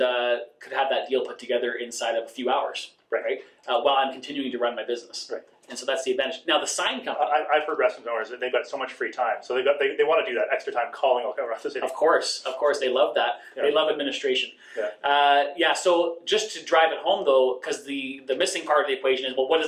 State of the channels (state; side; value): identical; both; correlation 1.00